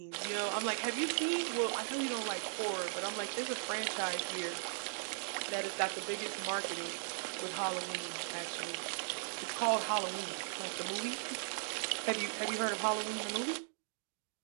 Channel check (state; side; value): silent; left; digital silence